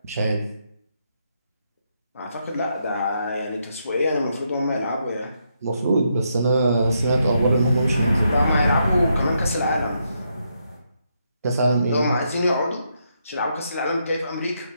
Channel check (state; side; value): inverted; both; correlation -0.78